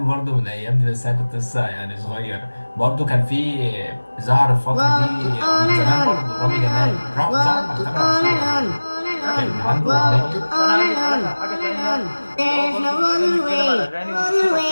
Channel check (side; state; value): both; inverted; correlation -1.00